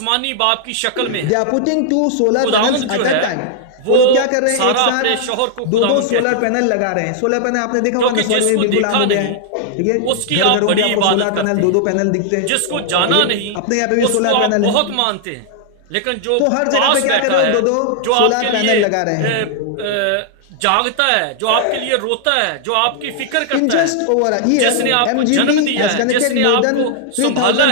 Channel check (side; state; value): both; different; correlation -0.01